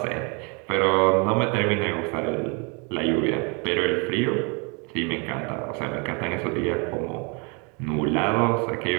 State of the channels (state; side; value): quieter; left; 32.6 dB